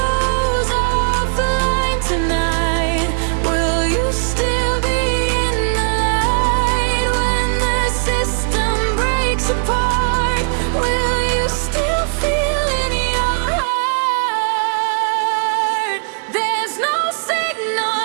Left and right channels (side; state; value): left; silent; 64 dB below the other